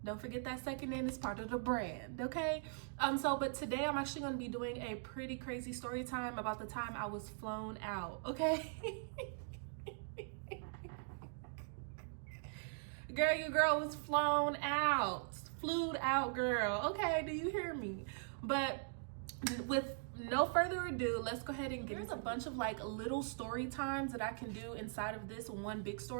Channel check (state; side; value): silent; left; digital silence